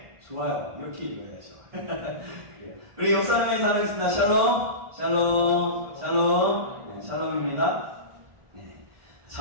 좋아요. 이렇게 읽어야죠. 우리 옆사람의 사랑했습니다. 샬롬, 샬롬, 샬롬. 네, 샬롬입니다. 네,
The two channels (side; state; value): left; late; 1.5 ms